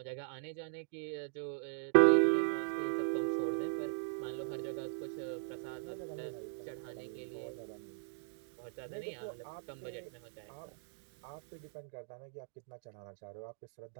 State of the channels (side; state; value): left; silent; digital silence